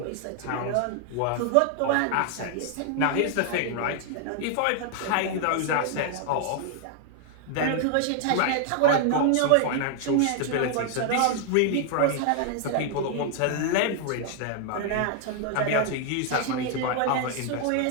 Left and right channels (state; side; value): different; both; correlation 0.00